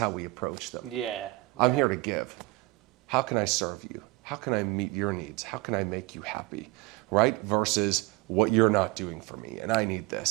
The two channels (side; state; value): left; quieter; 22.2 dB